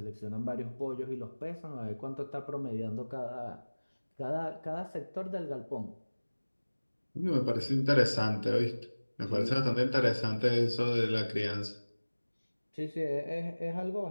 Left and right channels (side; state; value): both; inverted; correlation -1.00